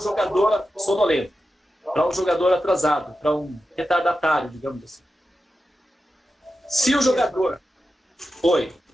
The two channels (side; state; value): both; normal; correlation 0.91